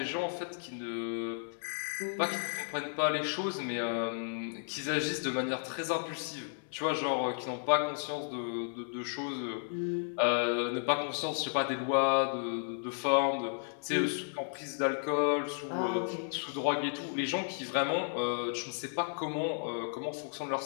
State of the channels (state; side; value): silent; right; digital silence